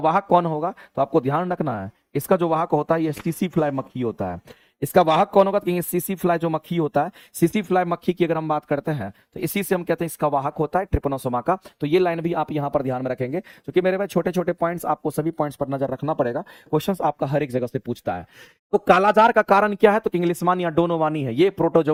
कौन होगा, तो आपको ध्यान रखना है इसका जो वाहक होता है ये सीसी फ्लाई मक्खी होता है। इसका वाहक कौन होगा, तो सीसी फ्लाई जो मक्खी होता है, सीसी फ्लाई मक्खी की अगर हम बात करते हैं तो इसी से हम कहते हैं इसका वाहक होता है ट्रिपेनोसोमा का। तो ये लाइन भी आप यहां पर ध्यान में रखेंगे, क्योंकि मेरे भाई छोटे छोटे पॉइंट्स आपको सभी पॉइंट्स पर नजर रखना पड़ेगा। क्वेश्चंस आपका हर एक जगह से पूछता है। तो कालाजार का कारण क्या है, तो इंग्लिशमान या डोनोवानी है, ये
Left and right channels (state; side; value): identical; both; correlation 1.00